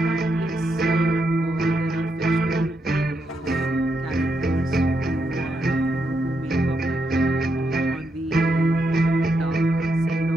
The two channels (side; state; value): both; normal; correlation 0.81